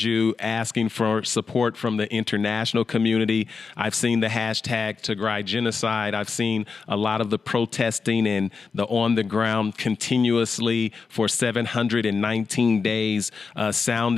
asking for support from the international community. I've seen the hashtag Tigray Genocide. I've seen a lot of the protesting and the on the ground continuously for 719 days,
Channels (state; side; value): quieter; right; 5.0 dB